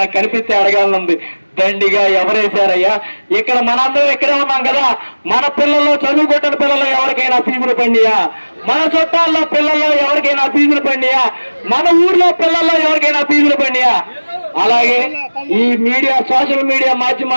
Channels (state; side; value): inverted; both; correlation -1.00